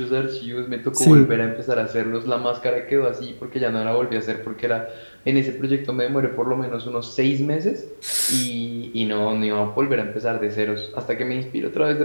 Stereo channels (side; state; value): both; inverted; correlation -1.00